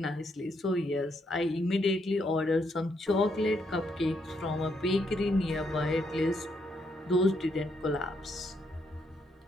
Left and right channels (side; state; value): both; normal; correlation 0.76